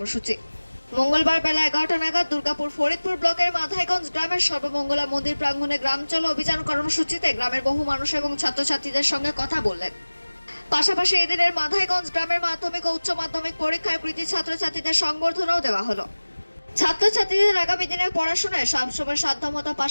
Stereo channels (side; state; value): both; inverted; correlation -1.00